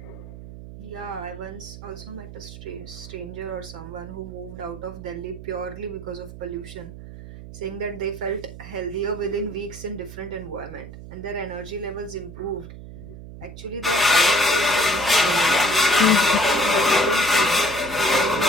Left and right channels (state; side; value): noise; right; hum, 13 dB below the sound